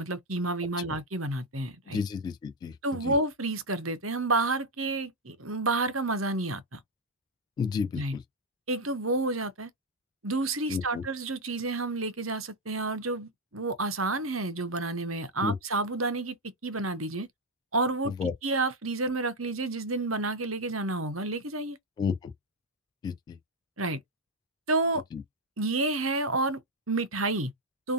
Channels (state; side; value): normal; both; correlation 0.03